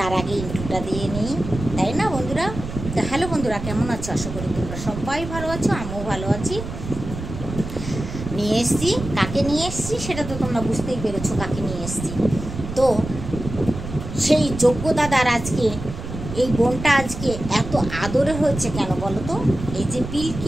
আগে ইন্ট্রোটা দিয়ে নিই, তাই না বন্ধুরা? তো হ্যালো বন্ধুরা, কেমন আছো? আশা করি তোমরা সবাই ভালো আছো, আমিও ভালো আছি। নিয়ে এসছি, কাকে নিয়ে এসছি সেটা তো তোমরা বুঝতেই পেরেছো কাকে নিয়ে এসছি। তো সেই যোগ্য দাদার আজকে এই বোনটা আজকে এত আদরে হয়েছে কেন বলো তো? এই যে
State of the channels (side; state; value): right; noise; rumble, 8 dB below the sound